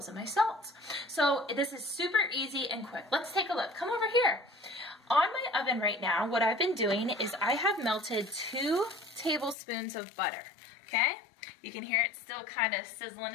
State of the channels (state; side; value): drops out; right; at 9.6 s